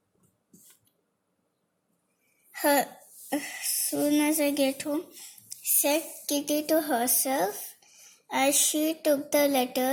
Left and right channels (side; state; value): both; identical; correlation 1.00